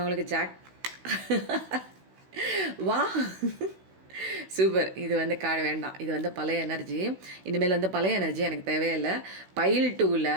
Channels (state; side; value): late; left; 16 ms